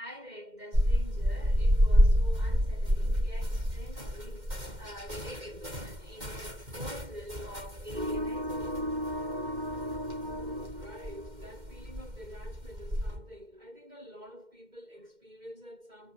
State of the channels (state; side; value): late; left; 2.1 ms